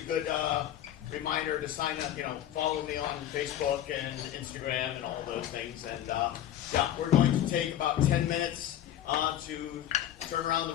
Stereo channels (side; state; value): right; quieter; 11.6 dB